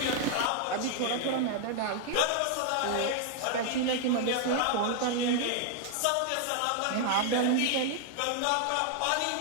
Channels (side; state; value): both; different; correlation 0.00